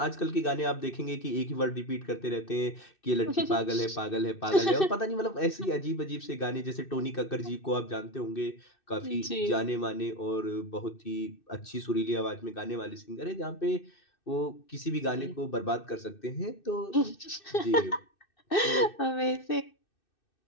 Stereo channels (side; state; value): right; late; 2.6 ms